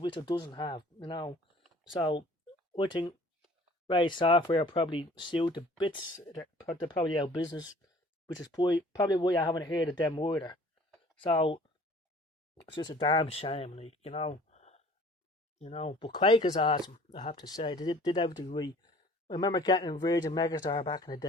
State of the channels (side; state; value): both; normal; correlation 0.51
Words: it doesn't have. So I think Ray Software probably sued the bits. They're probably out of business, which is probably why I haven't heard of them either. So it's just a damn shame, like, But Quake is awesome, I have to say. They did everything right. I remember getting Virgin Megastar back in the